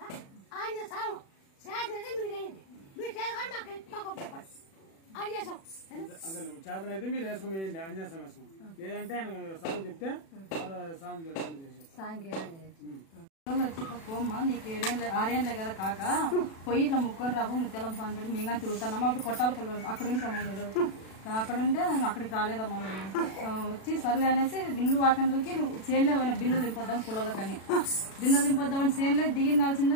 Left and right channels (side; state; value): right; late; 36 ms